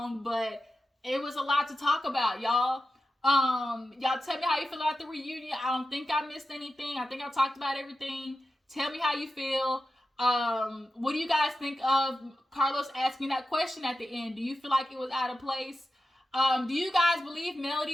but it was a lot to talk about, y'all. Y'all tell me how you feel about the reunion. I don't think I missed anything. I think I talked about everything. Tell me how you feel. What do you guys think of Carlos asking that question at the end? Do you feel like it was out of place? Do you guys believe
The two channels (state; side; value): normal; both; correlation 0.91